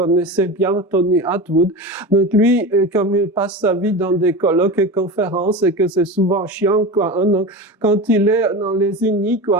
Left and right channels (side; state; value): both; normal; correlation 0.26